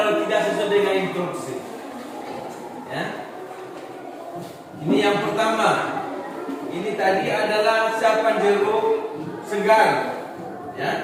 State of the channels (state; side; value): identical; both; correlation 1.00